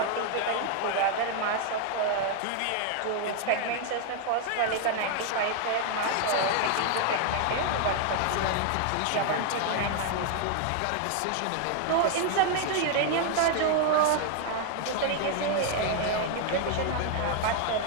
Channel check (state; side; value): different; both; correlation 0.00